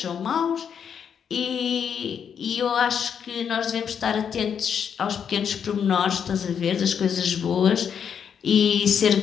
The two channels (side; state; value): right; quieter; 7.7 dB